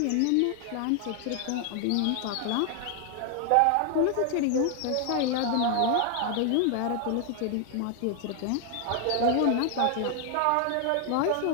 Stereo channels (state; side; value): different; both; correlation 0.00